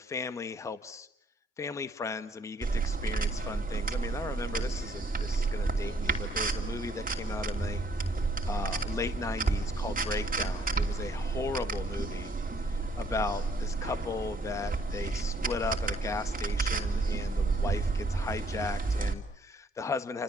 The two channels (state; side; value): normal; both; correlation 0.65